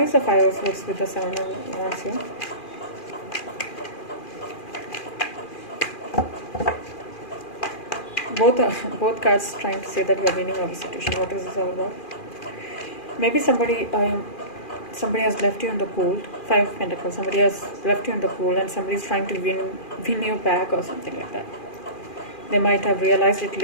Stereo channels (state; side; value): late; right; 2.4 ms